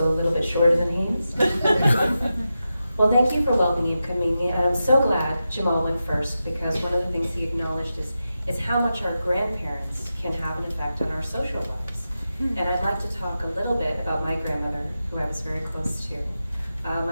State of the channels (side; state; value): both; inverted; correlation -0.91